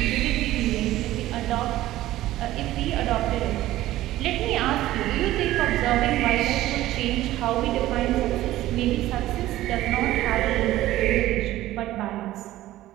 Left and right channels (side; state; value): left; quieter; 15.3 dB